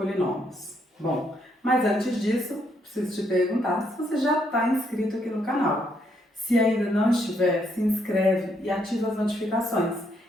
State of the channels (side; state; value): both; normal; correlation 0.74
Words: Bom, mas antes disso, preciso te perguntar se você já está inscrito aqui no canal. Se ainda não estiver, se inscreve e ativa as notificações,